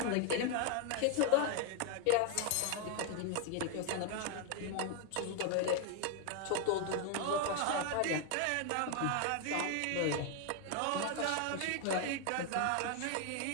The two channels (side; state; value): both; different; correlation 0.01